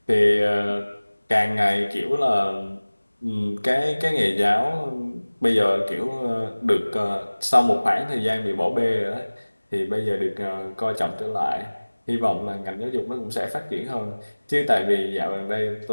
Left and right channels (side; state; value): both; inverted; correlation -1.00